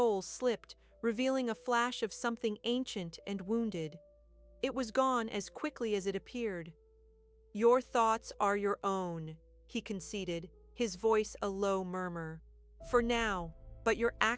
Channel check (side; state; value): both; identical; correlation 1.00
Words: slipped, revealing a flash of something ancient and wounded. It was gone as quickly as it appeared. Your thoughts are your own, he conceded, his voice a low murmur. For now, but your